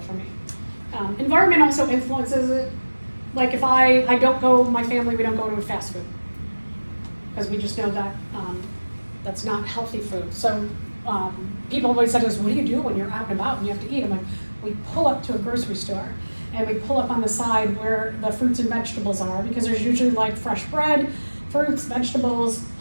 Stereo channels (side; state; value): both; inverted; correlation -1.00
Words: for me. Environment also influences it. Like if I don't go, my family, we don't go to fast food. Because we just know that that's not healthy food. So people always said to us, what do you do when you're out and about and you have to eat? I'm like, we pull up to a grocery store and we pull up on the side where the fruits and vegetables are, because there's usually fresh bread, fruits, vegetables,